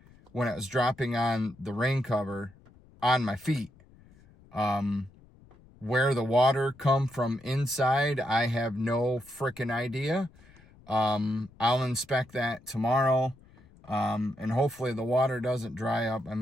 when it was dropping on the rain cover on my feet. Where the water come from inside, I have no freaking idea. I'll inspect that tomorrow. And hopefully the water doesn't dry up. I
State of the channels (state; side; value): noise; left; rumble, 26 dB below the sound